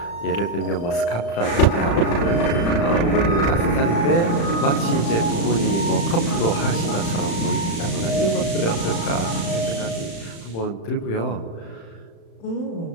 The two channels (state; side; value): late; right; 35 ms